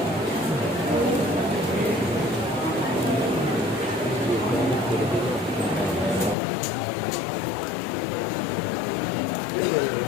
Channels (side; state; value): right; drops out; at 6.4 s